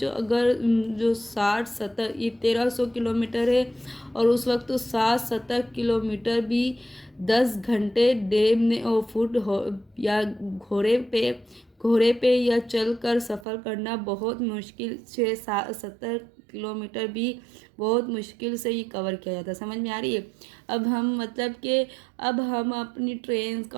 अगर जो 60-70 ये 1300 किलोमीटर है और उस वक्त तो 60-70 किलोमीटर भी 10 घंटे डे में और फुट हो या घोड़े पे या चल कर सफ़र करना बहुत मुश्किल। 6-70 किलोमीटर भी बहुत मुश्किल से ये कवर किया जाता है। समझ में आ रही है। अब हम मतलब कि अब हम अपनी ट्रेन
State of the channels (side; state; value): left; drops out; at 13.5 s